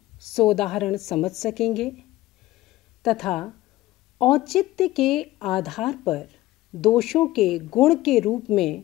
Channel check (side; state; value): right; quieter; 16.7 dB